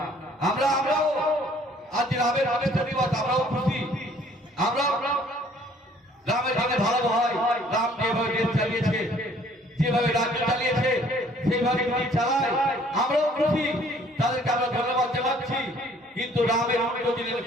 আমরাও আজ রামের প্রতিষ্ঠা দিবস, আমরাও খুশি, আমরা রামের জন্য ভালো হয়। রাম যেভাবে দেশ চালিয়েছে, যেভাবে রাজ্য চালিয়েছে, সেইভাবে যদি চালায় আমরাও খুশি, তাদেরকে আমরা ধন্যবাদ জানাচ্ছি। কিন্তু রামের উল্টো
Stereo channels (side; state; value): both; normal; correlation 0.58